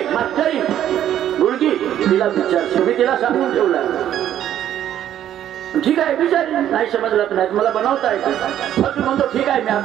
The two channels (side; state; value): left; quieter; 11.1 dB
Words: मास्टरी गुडगी, तिला विचार. मी तिला सांगून ठेवला ठीक आहे बिचारी नाही समजलं तर नाही मला बनवता येतो. फक्त म्हणतो ठीक आहे मी